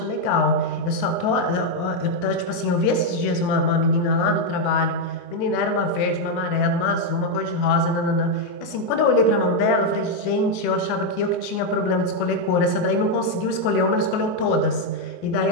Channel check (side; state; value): right; late; 23 ms